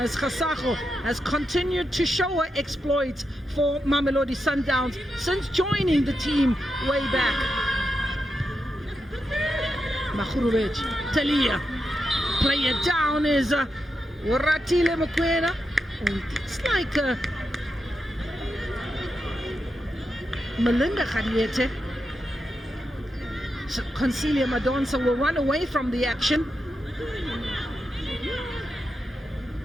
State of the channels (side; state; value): both; normal; correlation 0.86